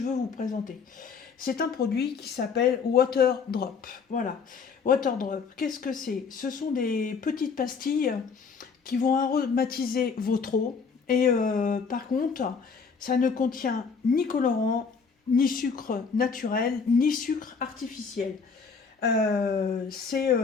veux vous présenter? C'est un produit qui s'appelle Water Drop. Voilà. Water Drop, qu'est-ce que c'est? Ce sont des petites pastilles qui vont aromatiser votre eau. Et par contre, ça ne contient ni colorant, ni sucre naturel, ni sucre artificiel. Euh, c'est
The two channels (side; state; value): right; quieter; 5.5 dB